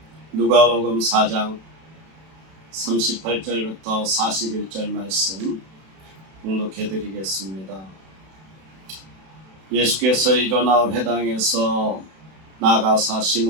누가복음 4장 38절부터 41절 말씀 봉독해 드리겠습니다. 예수께서 일어나 회당에서 나가사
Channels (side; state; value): left; late; 31 ms